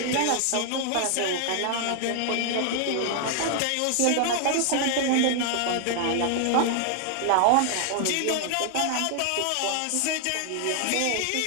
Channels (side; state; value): both; different; correlation 0.00